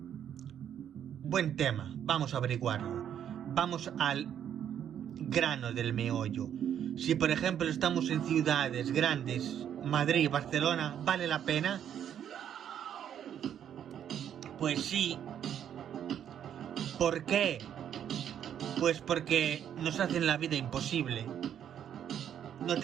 Buen tema, vamos a averiguarlo. Vamos al grano del meollo. Si por ejemplo estamos en ciudades grandes, Madrid, Barcelona, ¿vale la pena? Pues sí. ¿Por qué? Pues porque nos hacen la vida imposible. No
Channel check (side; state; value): left; quieter; 9.5 dB